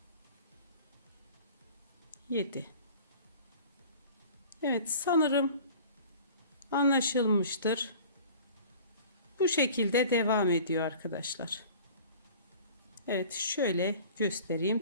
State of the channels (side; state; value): both; inverted; correlation -0.45